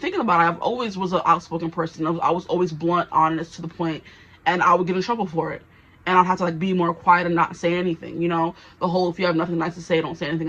about it, I've always was an outspoken person. I was always blunt, honest, to the point, and I would get in trouble for it. And I'd have to like be more quiet and not say anything, you know? The whole, if you have nothing nice to say, don't say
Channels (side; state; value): both; identical; correlation 1.00